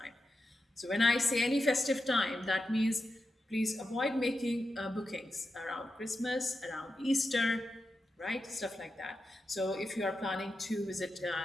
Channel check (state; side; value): normal; both; correlation 0.89